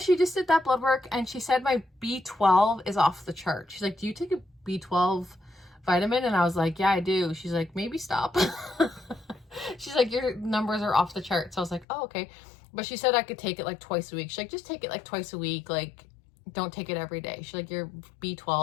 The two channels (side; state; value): right; drops out; at 11.9 s